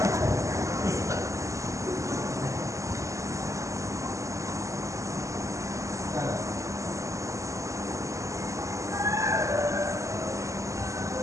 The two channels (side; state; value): left; late; 0.15 ms